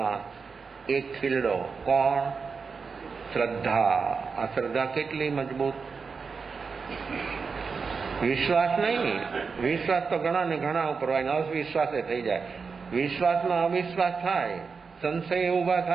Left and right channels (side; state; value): left; quieter; 5.1 dB